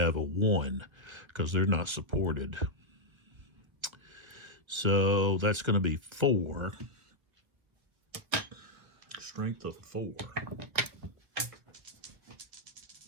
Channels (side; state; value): left; late; 1.8 ms